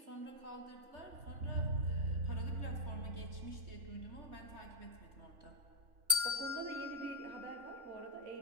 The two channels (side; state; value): left; late; 3.5 ms